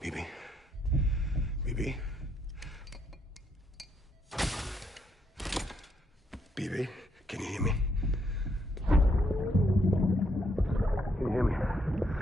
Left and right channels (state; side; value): normal; both; correlation 0.74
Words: Bibi? Bibi? Bibi, can you hear me? Can you hear me?